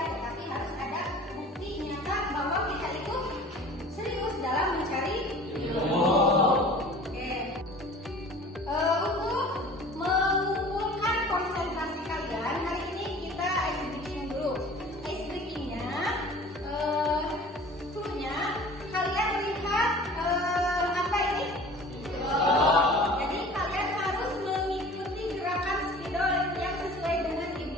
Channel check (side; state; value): both; normal; correlation 0.44